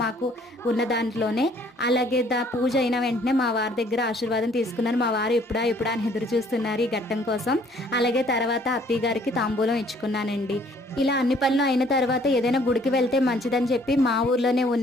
మాకు ఉన్న దాంట్లోనే అలాగే పూజ అయిన వెంటనే మా వారి దగ్గర ఆశీర్వాదం తీసుకున్నాను. మా వారు ఎప్పుడా అని ఎదురు చూస్తున్నారు ఈ ఘట్టం కోసం. అలాగే తర్వాత అత్తయ్య గారికి తాంబూలం ఇచ్చుకున్నానండి. ఇలా అన్ని పనులు అయిన తర్వాత ఏదైనా గుడికి వెళ్తే మంచిదని చెప్పి మా ఊర్లోనే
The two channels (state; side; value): normal; both; correlation 0.60